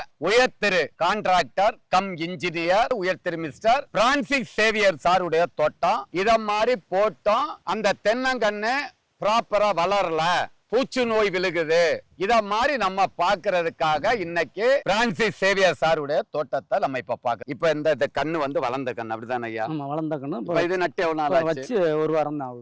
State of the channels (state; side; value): identical; both; correlation 1.00